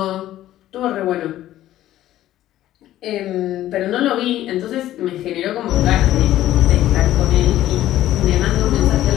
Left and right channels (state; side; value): quieter; right; 13.7 dB